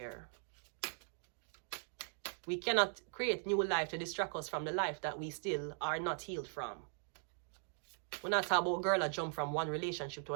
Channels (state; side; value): silent; left; 51 dB below the other